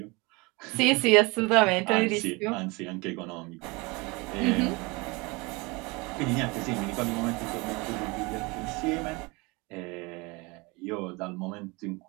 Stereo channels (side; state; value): left; quieter; 26.1 dB